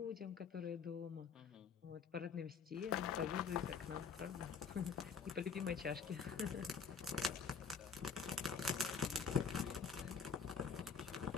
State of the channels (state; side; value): quieter; right; 6.0 dB